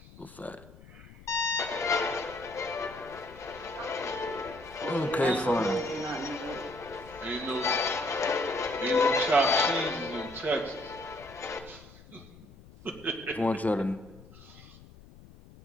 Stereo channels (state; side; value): noise; left; rumble, 21 dB below the sound